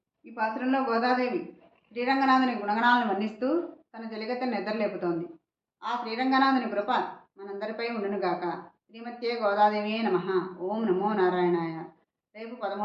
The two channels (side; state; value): both; identical; correlation 1.00